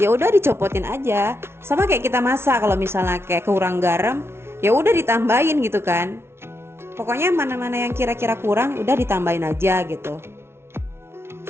udah dicopotin aja. Sama kayak kita masak, kalau misalnya kayak kurang garam, ya udah ditambahin gitu kan. Pokoknya mana-mana yang kira-kira kurang udah ditambahin aja gitu.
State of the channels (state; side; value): late; left; 0.12 ms